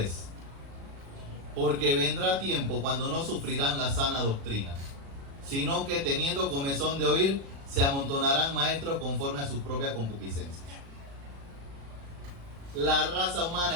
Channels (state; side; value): late; left; 36 ms